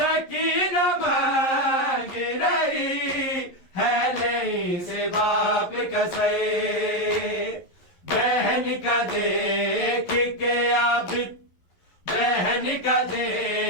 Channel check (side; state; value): right; late; 11 ms